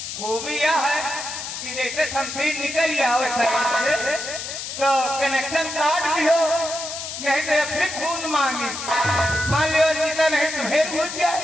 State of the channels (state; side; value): noise; left; hiss, 7 dB below the sound